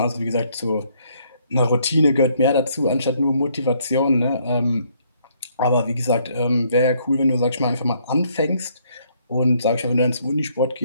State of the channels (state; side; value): inverted; both; correlation -0.68